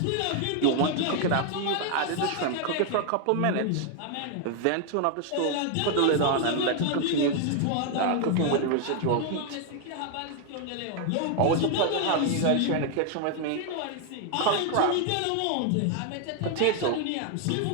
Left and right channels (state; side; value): different; both; correlation 0.01